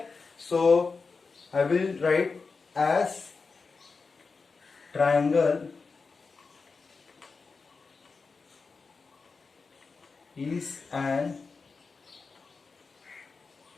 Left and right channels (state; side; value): quieter; right; 4.5 dB